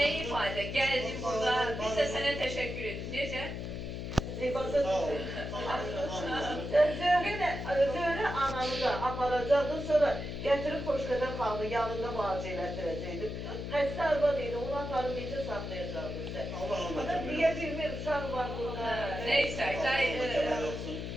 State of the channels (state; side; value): noise; left; hum, 6 dB below the sound